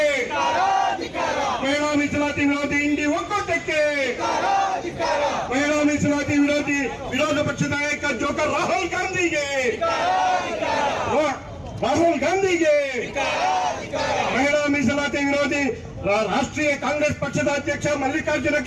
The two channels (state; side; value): identical; both; correlation 1.00